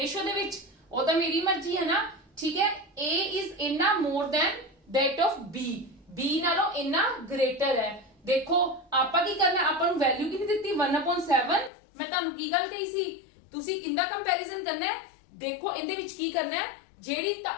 ਦੇ ਵਿੱਚ, ਉਹ ਤਾਂ ਮੇਰੀ ਮਰਜ਼ੀ ਹੈ ਨਾ। ਠੀਕ ਹੈ, A ਇਜ਼ ਇੰਨਾ more than that of B, B ਨਾਲੋਂ ਇੰਨਾ ਗ੍ਰੇਟਰ ਹੈ। ਦੇਖੋ ਆਪਾਂ ਕੀ ਕਰਨਾ, ਆਪਾਂ ਨੂੰ ਵੈਲਿਊ ਕਿੰਨੀ ਦਿੱਤੀ 1/7। ਮੈਂ ਤੁਹਾਨੂੰ ਕੀ ਗੱਲ ਕਹੀ ਸੀ, ਤੁਸੀਂ ਕਿੰਦਾ ਕੰਪੈਰੀਜ਼ਨ ਕਰਨਾ ਹੈ। ਦੇਖੋ ਇਹਦੇ ਵਿੱਚ ਕੀ ਕਰਨਾ ਹੈ, ਜਿਹੜੀ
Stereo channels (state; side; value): drops out; right; at 11.7 s